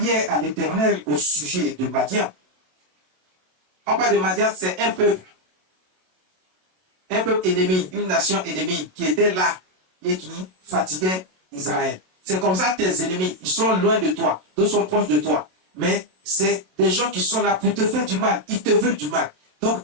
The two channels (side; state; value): left; late; 27 ms